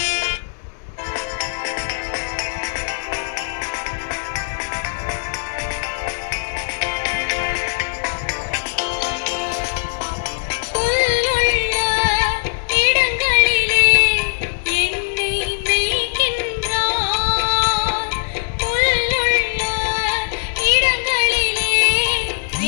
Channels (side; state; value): right; silent; digital silence